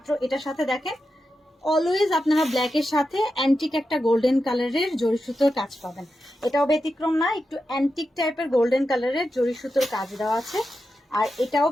এটার সাথে দেখেন অলওয়েজ আপনারা ব্ল্যাকের সাথে অ্যান্টিক একটা গোল্ডেন কালারের জড়ি সুতোর কাজ পাবেন। এটাও ব্যতিক্রম না, একটু অ্যান্টিক টাইপের গোল্ডেন কালারের জড়ি সুতোর কাজ দেওয়া আছে। আর এটাও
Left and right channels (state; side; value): normal; both; correlation 0.89